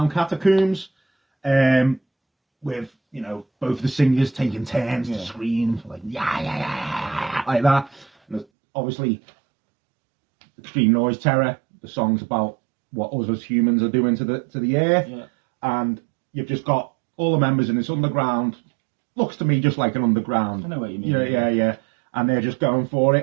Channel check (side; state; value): left; drops out; at 8.5 s